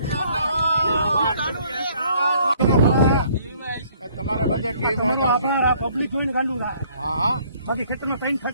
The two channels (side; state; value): both; inverted; correlation -0.61